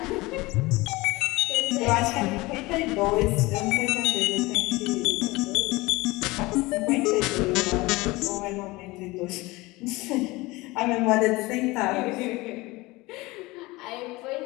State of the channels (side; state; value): right; quieter; 21.7 dB